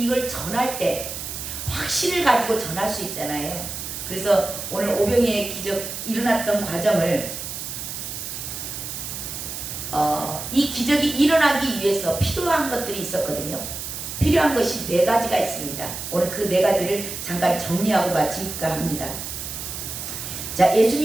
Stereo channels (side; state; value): right; noise; hiss, 7 dB below the sound